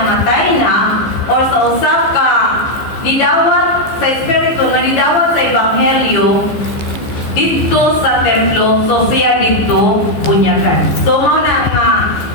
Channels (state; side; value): late; right; 15 ms